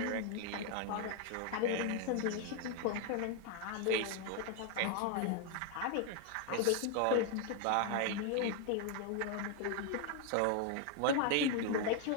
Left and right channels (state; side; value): different; both; correlation 0.01